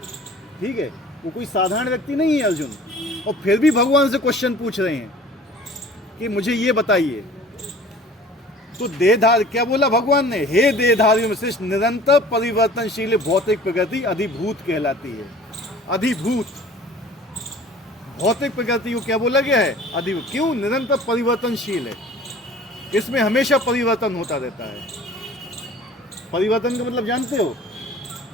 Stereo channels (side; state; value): both; normal; correlation 0.47